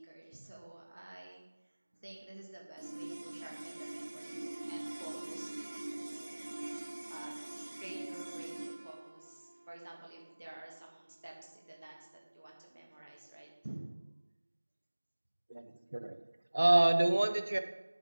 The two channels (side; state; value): both; inverted; correlation -1.00